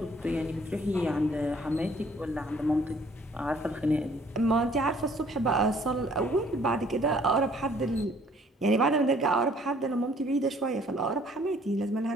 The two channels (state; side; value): normal; both; correlation 0.59